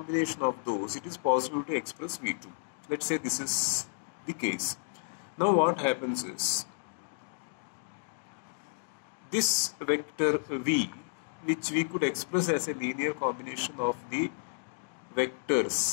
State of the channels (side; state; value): right; silent; digital silence